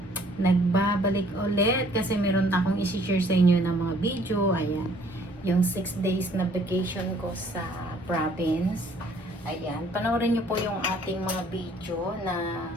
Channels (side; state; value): both; normal; correlation 0.60